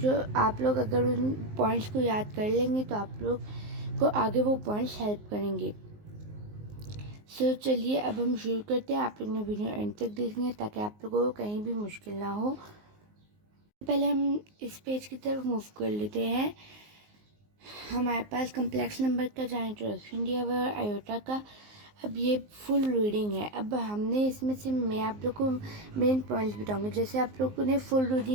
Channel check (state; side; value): late; left; 19 ms